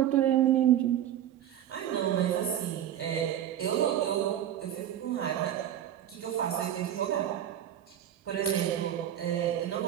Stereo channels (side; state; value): left; quieter; 10.8 dB